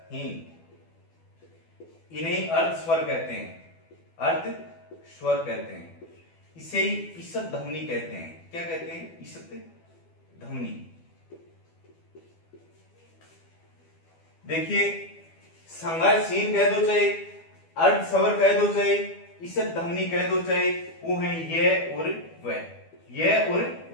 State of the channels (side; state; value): right; late; 12 ms